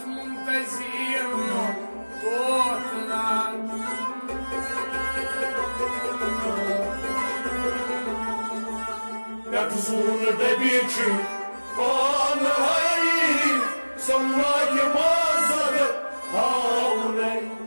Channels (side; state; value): both; inverted; correlation -1.00